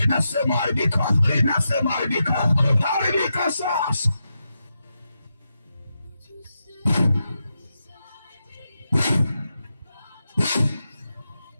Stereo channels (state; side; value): inverted; both; correlation -0.87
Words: nasema haribika, nasema haribika, haribika sasa.